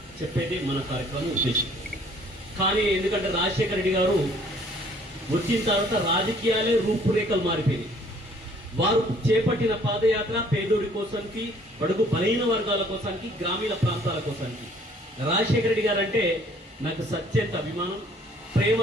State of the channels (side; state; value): both; normal; correlation 0.58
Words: చెప్పేది మన కార్యక్రమం ఉద్దేశం. కానీ ఎందుకంటే రాజశేఖర రెడ్డి గారు వచ్చిన తర్వాత రాజకీయాలే రూపురేఖలు మారిపోయినాయి. వారు చేపట్టిన పాదయాత్ర పేదోడి కోసానికి, బడుగు బలహీన వర్గాల కోసానికి, గ్రామీణ ప్రాంతాల కోసానికి. రాజశేఖర రెడ్డి గారు అంటే నాకు సత్యంత అభిమానం,